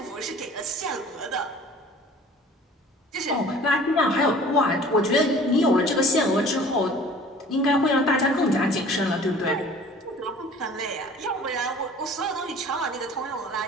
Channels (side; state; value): both; normal; correlation 0.47